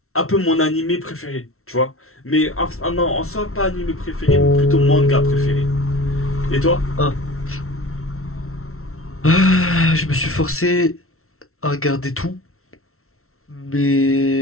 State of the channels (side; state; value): right; late; 0.63 ms